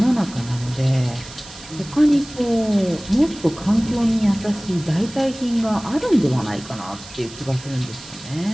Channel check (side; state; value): right; noise; hiss, 17 dB below the sound